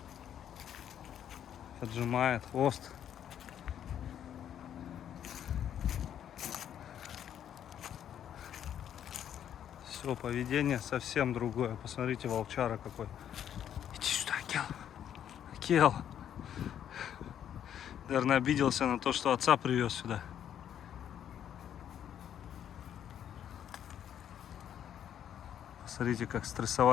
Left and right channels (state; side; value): quieter; right; 9.8 dB